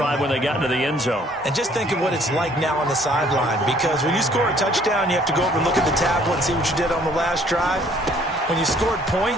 when they got into the end zone. And just think of what it's like now on the sideline, because when you score a touchdown, you have to go over and look at the tablet and see what you did on the last drive. When you scored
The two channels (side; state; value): both; normal; correlation 0.60